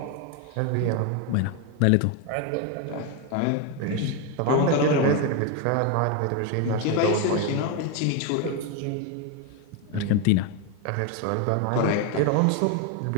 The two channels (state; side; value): different; both; correlation 0.02